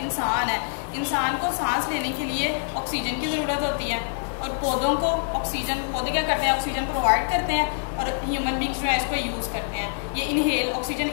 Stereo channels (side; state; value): right; silent; digital silence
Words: इंसान है। इंसान को सांस लेने के लिए ऑक्सीजन की ज़रूरत होती है और पौधों को ऑक्सीजन, पौधे क्या करते हैं, ऑक्सीजन प्रोवाइड करते हैं और ह्यूमन बीइंग्स जो है इसको यूज़ करते हैं। ये इनहेल, ऑक्सीजन